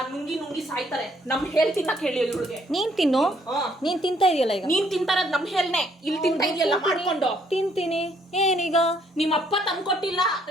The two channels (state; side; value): normal; both; correlation 0.67